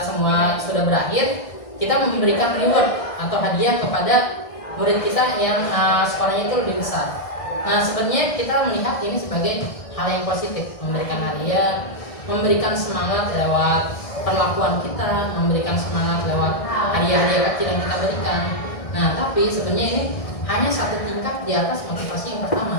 semua sudah berakhir, kita memberikan reward atau hadiah kepada murid kita yang skornya itu lebih besar. Nah, sebenarnya kita melihat ini sebagai hal yang positif, memberikan hadiah, memberikan semangat lewat perlakuan kita, memberikan semangat lewat hadiah-hadiah kecil yang kita berikan. Nah, tapi sebenarnya ini hanya satu tingkat di atas motivasi yang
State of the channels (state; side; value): late; right; 1.6 ms